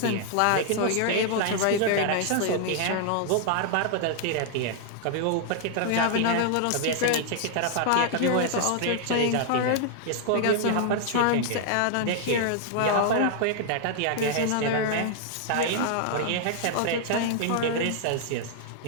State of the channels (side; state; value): both; different; correlation -0.01